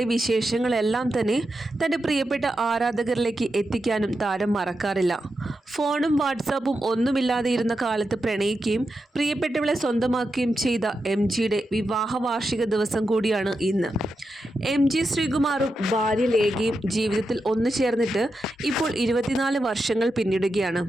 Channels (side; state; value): both; normal; correlation 0.88